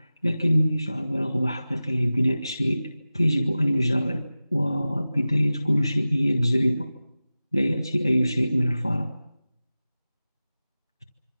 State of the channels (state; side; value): inverted; both; correlation -0.96